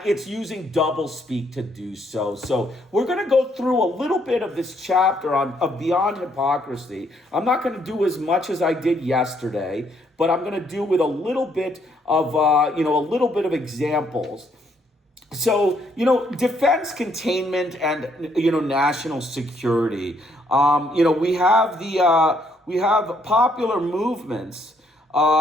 it's using doublespeak to do so. So we're going to go through a little bit of this chapter of Beyond Hypocrisy. I'm not going to do as much as I did yesterday, but I'm going to do with a little bit of examples. So, defense, containment, and, national security. We have popular movements.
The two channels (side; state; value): both; normal; correlation 0.70